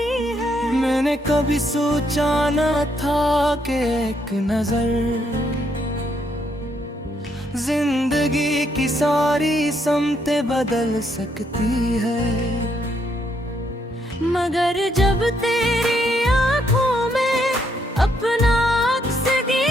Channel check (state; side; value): normal; both; correlation 0.74